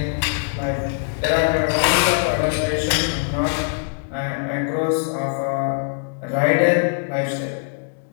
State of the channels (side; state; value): right; silent; digital silence